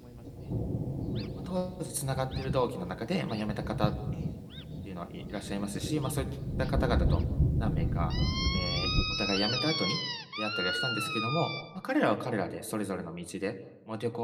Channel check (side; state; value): both; identical; correlation 1.00